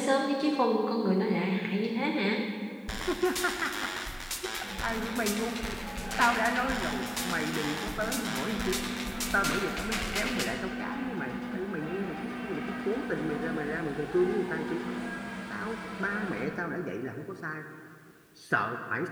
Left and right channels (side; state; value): both; identical; correlation 1.00